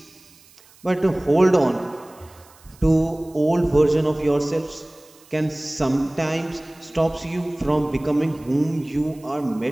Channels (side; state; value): right; noise; hiss, 27 dB below the sound